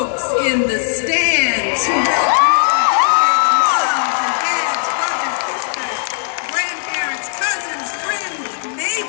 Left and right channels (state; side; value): silent; right; digital silence